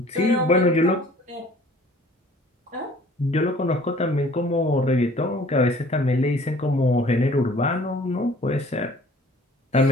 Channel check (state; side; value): normal; both; correlation 0.52